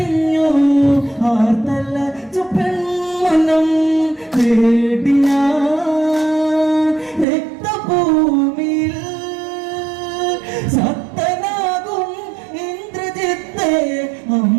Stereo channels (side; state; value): left; drops out; at 7.2 s